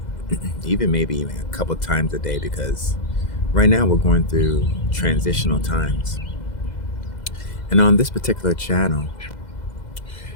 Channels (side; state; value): right; late; 2.0 ms